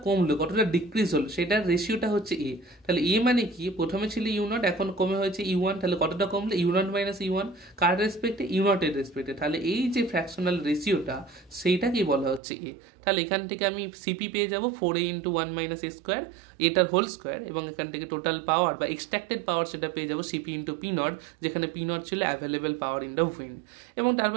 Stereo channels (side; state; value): left; drops out; at 12.4 s